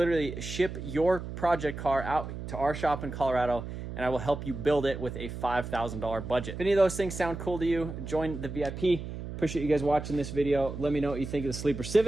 ship your project car out to our shop in Colorado, and I will help you build it with a $5,000 budget. If any of those things sound cool to you, join the VIP. Appreciate you guys watching this video. Let me know what you think of the Sleeper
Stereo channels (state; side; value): noise; right; hum, 8 dB below the sound